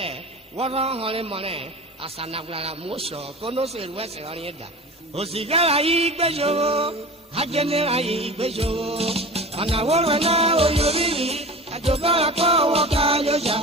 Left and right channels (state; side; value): normal; both; correlation 0.34